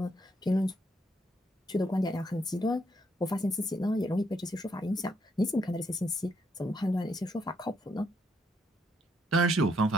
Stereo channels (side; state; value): both; normal; correlation 0.74